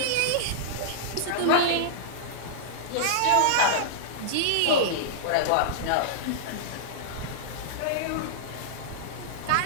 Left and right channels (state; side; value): different; both; correlation -0.02